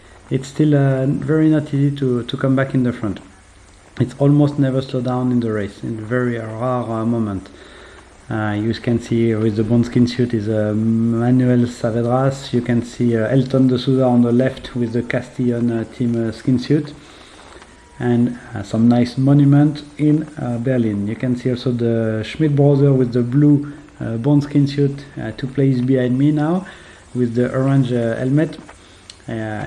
it's still very not easy to come back in the front. It's almost never slow down in the race, in a very rare moment. You can see with the bone skin suit is Manuel Saavedra. You can see Elton de Souza on the left with the CASTELLÓN team skin suit, and some nice monument in Berlin. You can see also the Schmidt brother with the blue bone skin suit, 2 places behind me now with the orange helmet.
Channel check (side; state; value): both; identical; correlation 1.00